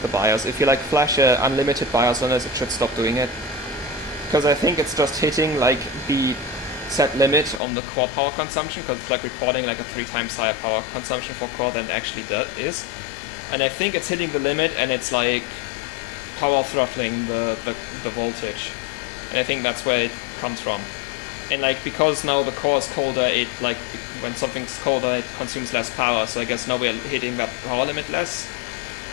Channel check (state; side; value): drops out; right; at 7.6 s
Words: the BIOS. If you like flash a unlimited BIOS on this, it should stop doing it. Because I think it's just hitting like the set limit on the core power consumption, because it's like reporting like a 3 times higher power consumption for core than it actually is. And I think it's hitting the limit and it's like power throttling the voltage. And I think that's where it comes from. And like, because now the core is colder, it like, when something's colder it consumes less power, so I guess now we're hitting that power limit less.